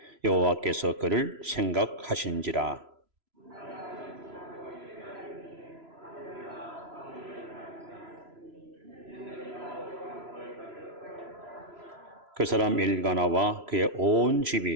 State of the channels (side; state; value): left; late; 3.0 ms